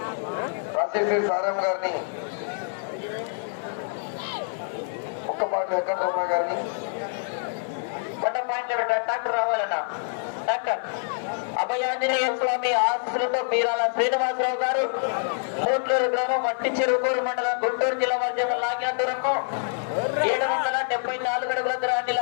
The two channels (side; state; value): right; silent; 61 dB below the other